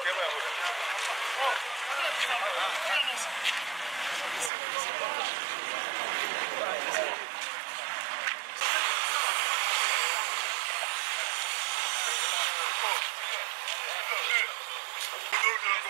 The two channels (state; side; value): drops out; left; at 4.5 s